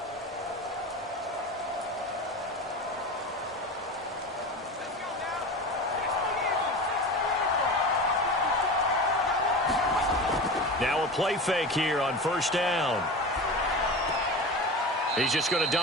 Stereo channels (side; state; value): both; normal; correlation 0.29